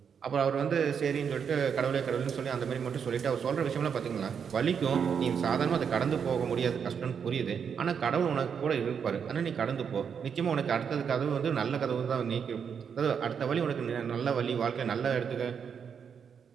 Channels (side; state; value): left; quieter; 7.1 dB